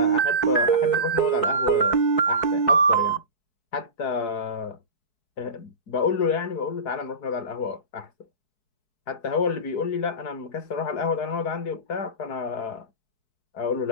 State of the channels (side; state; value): right; late; 4.6 ms